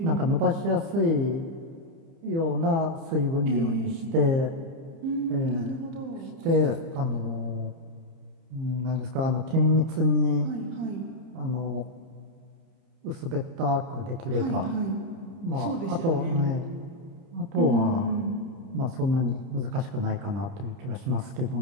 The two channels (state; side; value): late; left; 30 ms